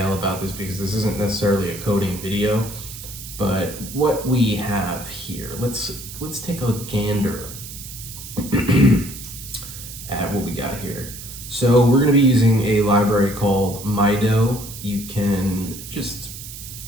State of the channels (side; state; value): right; noise; hiss, 12 dB below the sound